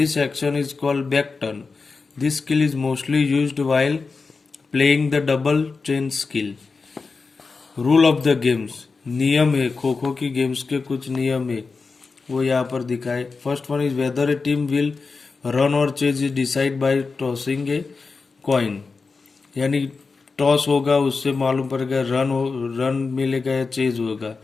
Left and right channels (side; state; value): right; quieter; 4.4 dB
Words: action is called back turn. This skill is mostly used while playing the double chain skill. Rule of the games, नियम है खो खो की games के कुछ नियम है वो यहाँ पर दिखाए. First one is whether a team will run or chase is decide by tossing a coin. यानी टॉस होगा उससे मालूम पड़ेगा रन मिलेगा या चेज होगा.